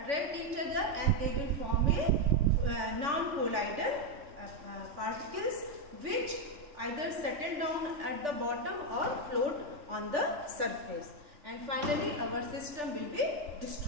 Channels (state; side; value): late; left; 3.4 ms